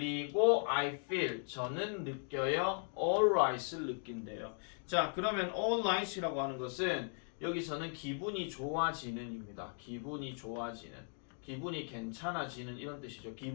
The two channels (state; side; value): silent; right; 53 dB below the other